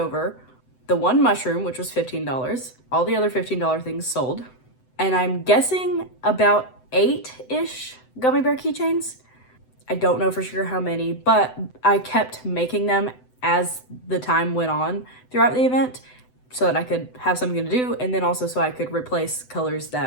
the 1 mushroom, which was $15. All the other $15 things sold. And I'm guessing about 8-ish gummy bear keychains. I don't know for sure how many, but I kept making them as the time went on throughout the event so that I could have something to do, and then also so I could replace colors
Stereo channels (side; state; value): right; late; 7.9 ms